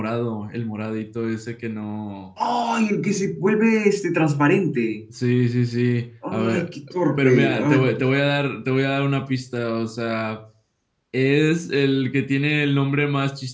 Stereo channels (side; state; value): both; identical; correlation 1.00